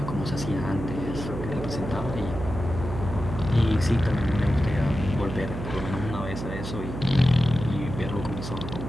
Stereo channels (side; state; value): right; noise; hum, 7 dB below the sound